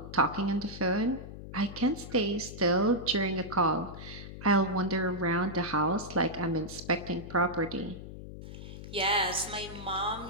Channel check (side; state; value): left; noise; hum, 12 dB below the sound